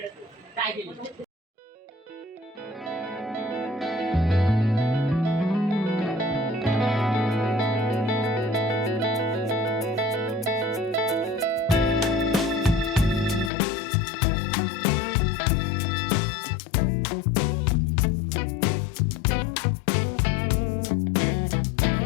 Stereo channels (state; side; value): drops out; right; at 13.5 s